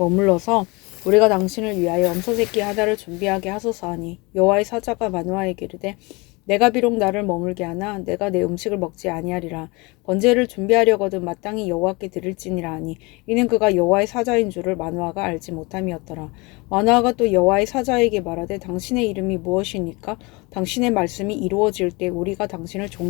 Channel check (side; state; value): right; quieter; 26.1 dB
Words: 우리가 당신을 위하여 염소새끼 하나를 준비하게 하소서 하니 여호와의 사자가 마노아에게 이르되 내가 비록 나를 머물게 하나 내가 내 음식을 먹지 아니하리라. 번제를 준비하려거든 마땅히 여호와께 드릴지니라 하니 이는 그가 여호와의 사자인 줄을 마노아가 알지 못함이었더라. 마노아가 또 여호와의 사자에게 말하되 당신의 이름이 무엇이니까 당신의 말씀이 이루어질 때 우리가 당신을